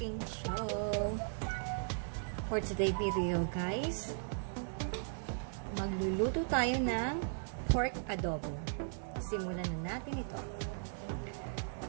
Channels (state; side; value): silent; left; digital silence